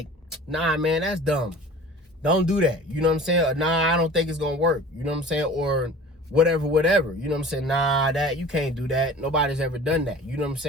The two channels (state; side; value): normal; both; correlation 0.42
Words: nah, man, that's dumb. Don't do that. You know what I'm saying? Or, nah, I don't think it's going to work. You know what I'm saying? Or whatever. You know what I'm saying? Nah, you can't do that. Nobody's ever done that. You know what I'm